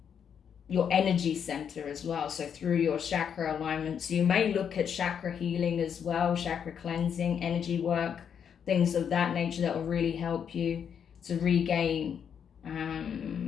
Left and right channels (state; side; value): quieter; right; 7.8 dB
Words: your energy center as well. So through your chakra alignments, you may look at chakra healing as well, chakra cleansing, energy work, things of that nature that will really help you to regain